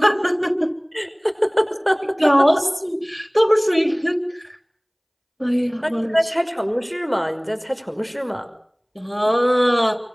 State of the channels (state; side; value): identical; both; correlation 1.00